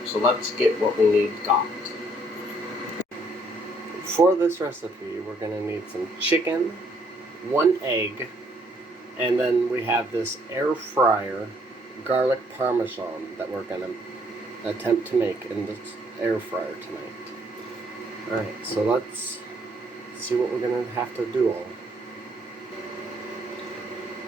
so let's get what we need got. For this recipe, we're going to need some chicken, 1 egg, and then we have this air fryer garlic parmesan that we're going to attempt to make in this air fryer tonight. Alright, so let's see what we're going to have to do all.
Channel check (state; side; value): normal; both; correlation 0.67